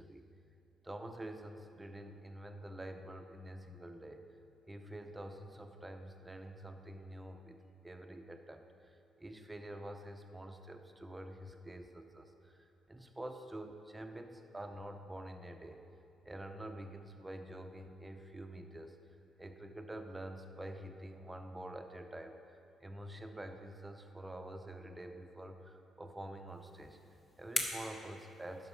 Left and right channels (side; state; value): both; normal; correlation 0.87